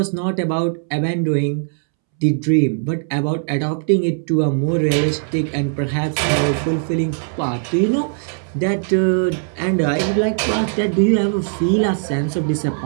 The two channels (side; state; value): left; silent; 66 dB below the other